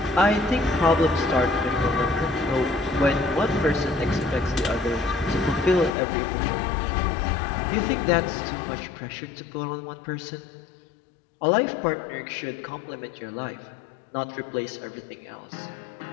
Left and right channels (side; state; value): right; drops out; at 5.9 s